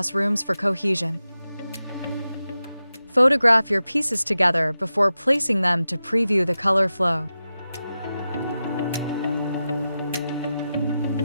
rooms for cohesion. Photograph your pieces together before placing them to preview the color flow.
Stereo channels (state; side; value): inverted; both; correlation -0.92